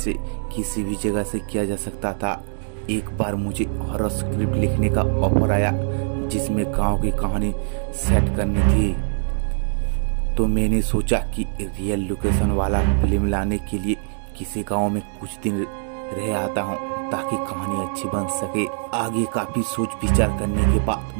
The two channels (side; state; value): left; silent; digital silence